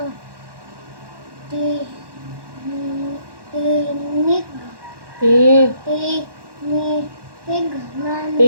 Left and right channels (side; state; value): left; late; 1.1 ms